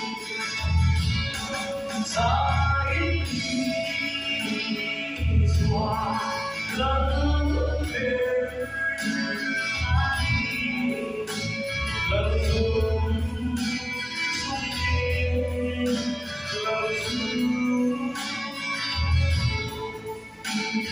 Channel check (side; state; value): both; identical; correlation 1.00